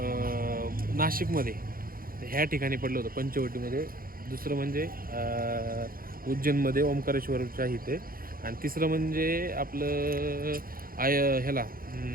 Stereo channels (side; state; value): left; late; 0.42 ms